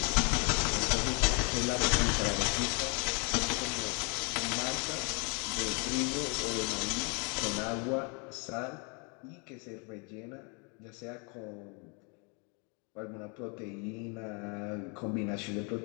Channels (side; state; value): right; quieter; 34.1 dB